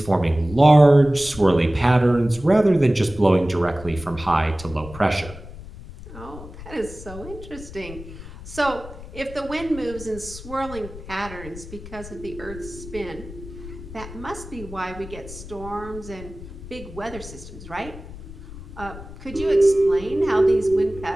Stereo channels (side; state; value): left; noise; rumble, 14 dB below the sound